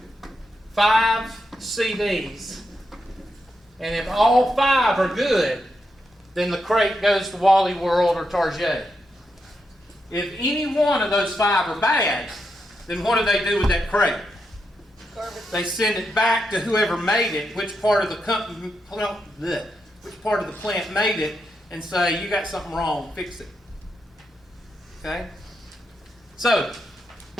5 CDs, and if all 5 are good, then the crate goes to Wally World or Target. If any one of those 5 are bad, then what do they do with that crate? Garbage. They send it back to whoever made it, which part of the company, which part of the plant made it, and say, you got something wrong, fix it. Okay? So,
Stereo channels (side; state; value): both; normal; correlation 0.84